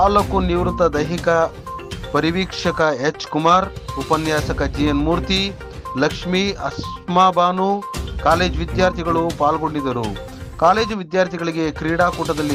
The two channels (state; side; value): identical; both; correlation 1.00